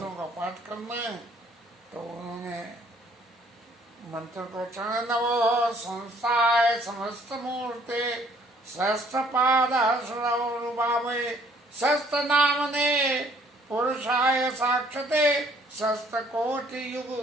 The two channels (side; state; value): both; normal; correlation 0.61